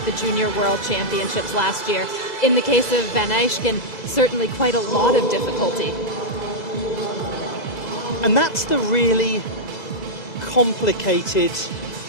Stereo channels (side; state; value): right; late; 2.3 ms